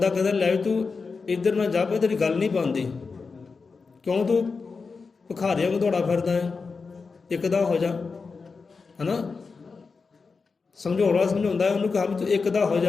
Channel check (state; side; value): quieter; right; 4.7 dB